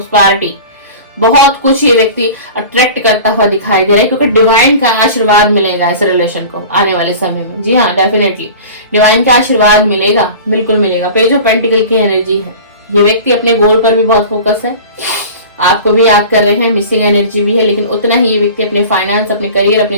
बहुत कुछ ये व्यक्ति अट्रैक्ट करता हुआ दिखाई दे रहा है, क्योंकि डिवाइन का आशीर्वाद मिलेगा इस रिलेशन को आने वाले समय में। जी हाँ, डेफिनेटली डिवाइन का आशीर्वाद मिलेगा, बिल्कुल मिलेगा। पेज ऑफ पेंटिकल की एनर्जी है। ये व्यक्ति अपने गोल पर भी बहुत फोकस है, आपको भी याद कर रहे हैं, मिसिंग एनर्जी भी है, लेकिन उतना ही ये व्यक्ति अपने फाइनेंस, अपने करियर,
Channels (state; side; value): inverted; both; correlation -0.38